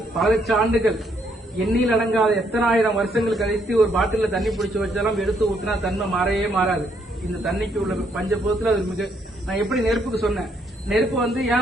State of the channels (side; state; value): both; normal; correlation 0.72